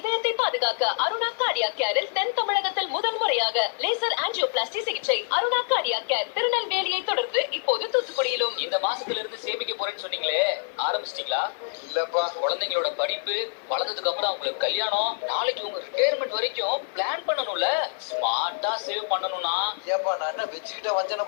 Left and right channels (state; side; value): silent; right; digital silence